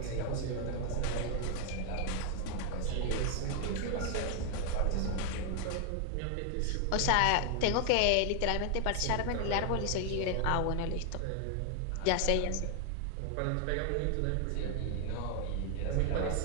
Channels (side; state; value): both; different; correlation 0.00